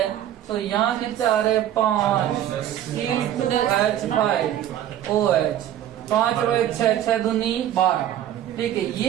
तो यहाँ कितने आ रहे, 5 C2H5OH 5 और 1 6, 6 दूनी 12, ठीक है।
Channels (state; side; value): quieter; left; 11.5 dB